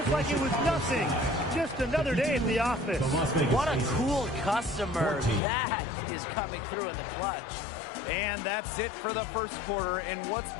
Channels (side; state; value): right; drops out; at 5.4 s